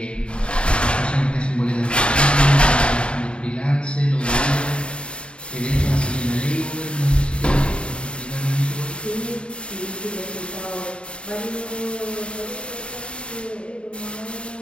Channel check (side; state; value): right; late; 0.055 ms